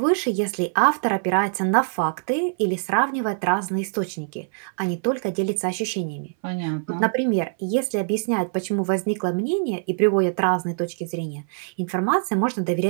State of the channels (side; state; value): left; silent; 59 dB below the other